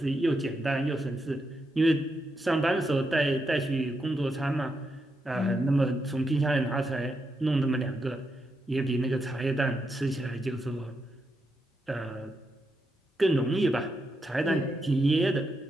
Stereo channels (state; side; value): normal; both; correlation 0.83